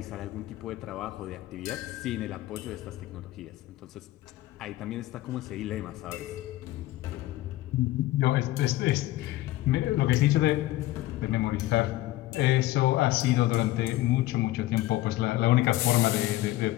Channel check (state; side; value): quieter; right; 16.5 dB